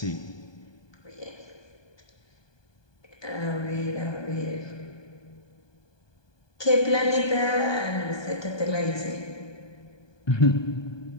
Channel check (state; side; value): late; right; 1.2 ms